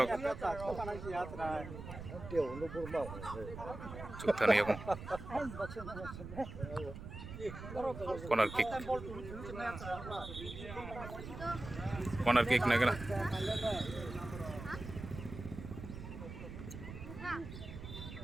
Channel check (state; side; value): noise; right; rumble, 10 dB below the sound